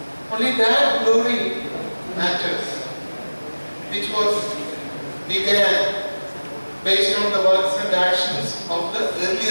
Only that glory matters, which was began based on the works and actions of the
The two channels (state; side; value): inverted; both; correlation -1.00